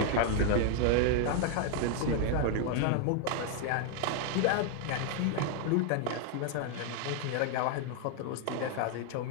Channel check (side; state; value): both; different; correlation 0.00